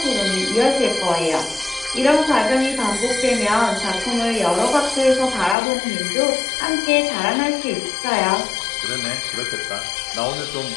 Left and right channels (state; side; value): drops out; right; at 5.6 s